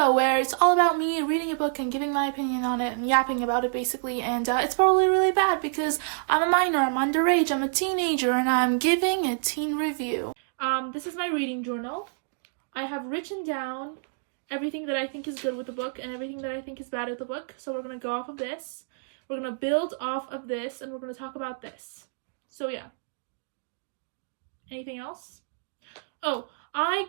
where it's all about me reading a book and giving my opinion on it and yapping about it basically. And it's probably really bad because I'm a minor, I'm underage, I'm a teenager, and I'm giving a teen review. This is my reading journal. I have written down everything that I think is good with the book and everything that I think is bad with the book. So we're going to go off of this. We're going to build off of this and we're going to talk about this. So yeah. Anything else? Oh, I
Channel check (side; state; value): left; silent; digital silence